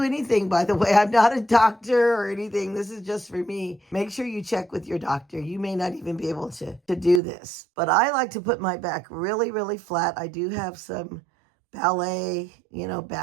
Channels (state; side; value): drops out; left; at 7.2 s